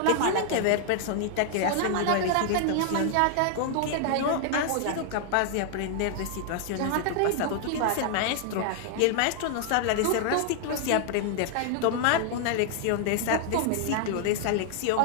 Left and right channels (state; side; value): different; both; correlation 0.00